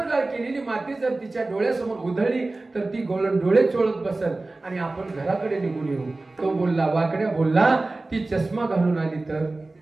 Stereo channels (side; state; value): left; quieter; 3.1 dB